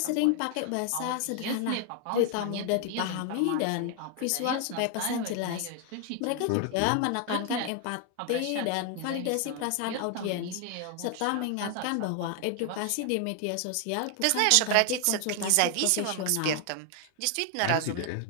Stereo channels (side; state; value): both; different; correlation 0.00